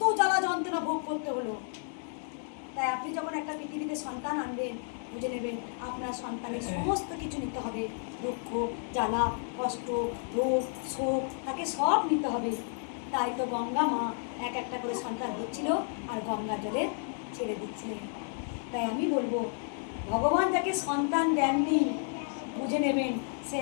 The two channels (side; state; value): right; silent; 57 dB below the other